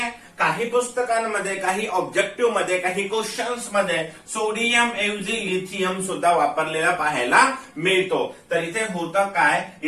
काही पुस्तकांमध्ये, काही ऑब्जेक्टिव्ह मध्ये, काही क्वेश्चन्स मध्ये सोडियम ऐवजी लिथियम सुद्धा वापरलेला पाहायला मिळतो. तर इथे होतं काय,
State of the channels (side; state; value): both; identical; correlation 1.00